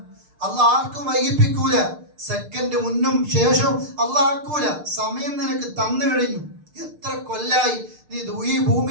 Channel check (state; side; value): late; left; 6.6 ms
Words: അള്ളാഹ് ആർക്കും വൈകിപ്പിക്കൂല, സെക്കൻഡ് മുന്നും ശേഷവും അള്ളാഹ് ആക്കൂല. സമയം നിനക്ക് തന്നു കഴിഞ്ഞു. എത്ര കൊല്ലായി നീ ഈ